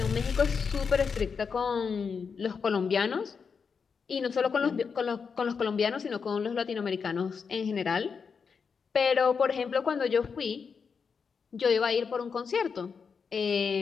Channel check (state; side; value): quieter; right; 5.8 dB